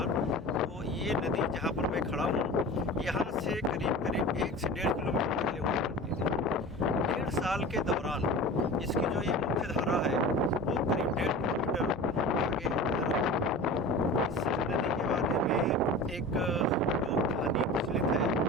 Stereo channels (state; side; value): normal; both; correlation 0.35